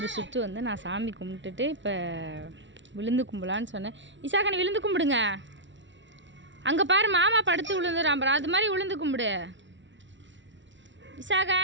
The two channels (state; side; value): late; left; 0.54 ms